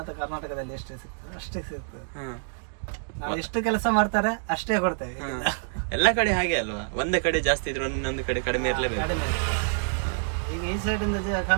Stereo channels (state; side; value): silent; left; digital silence